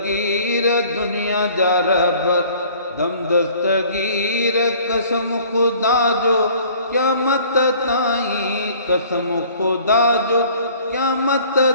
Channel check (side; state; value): both; inverted; correlation -0.53